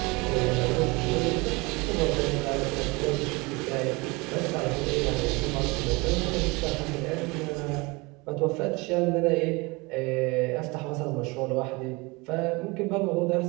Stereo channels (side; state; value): left; quieter; 25.7 dB